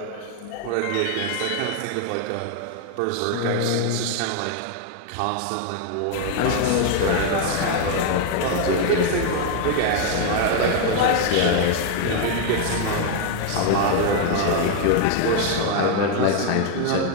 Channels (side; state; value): both; different; correlation 0.01